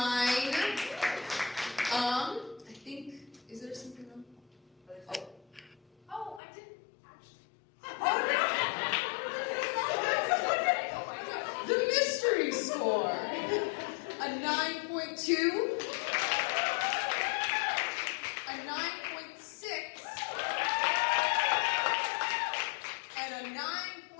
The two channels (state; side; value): drops out; right; at 6.4 s